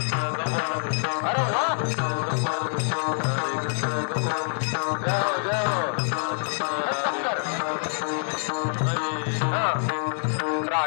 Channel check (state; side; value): silent; right; digital silence